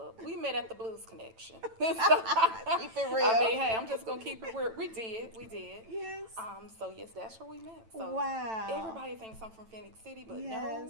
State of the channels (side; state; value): left; late; 9.0 ms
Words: We met at the Blues Connection. Keep it real. I mean, hey, I'm just gonna keep it real. We did. Yes. So yes, that's where we met. So Wow. everybody thinks I'm from Phoenix City, but Yes.